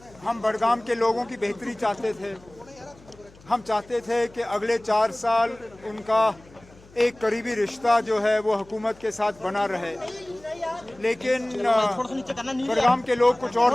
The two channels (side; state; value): left; noise; hum, 25 dB below the sound